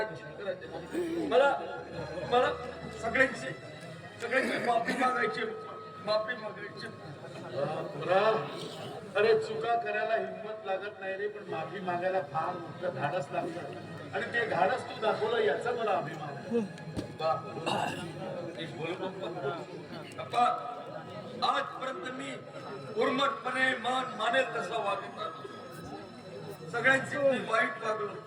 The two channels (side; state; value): both; identical; correlation 1.00